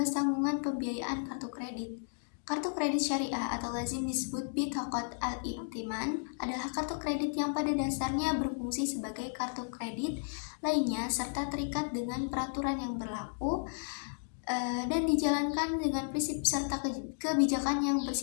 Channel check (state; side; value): silent; right; digital silence